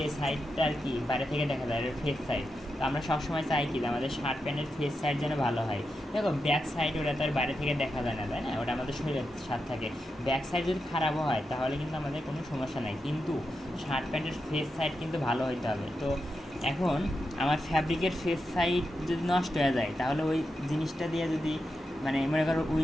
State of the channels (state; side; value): normal; both; correlation 0.87